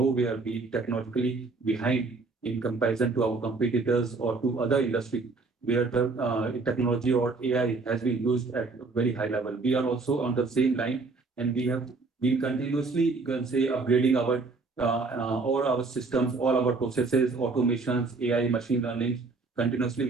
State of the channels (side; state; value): left; quieter; 3.9 dB